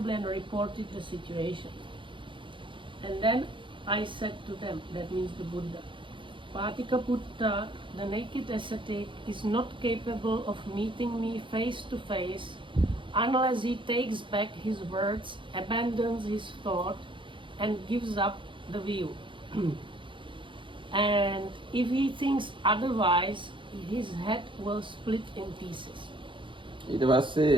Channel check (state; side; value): late; left; 0.24 ms